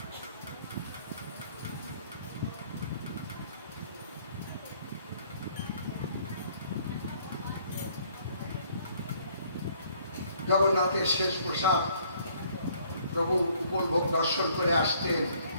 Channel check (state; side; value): inverted; both; correlation -0.62